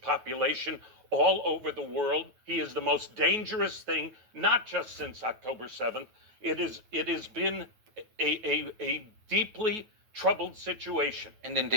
all over the world. He is the most dangerous thing, not just since October 7th. It has been a deeply troubled situation. And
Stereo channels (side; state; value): left; late; 9.3 ms